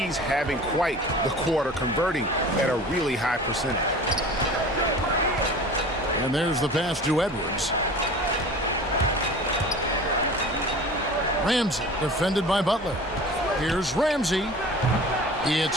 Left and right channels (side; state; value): both; normal; correlation 0.40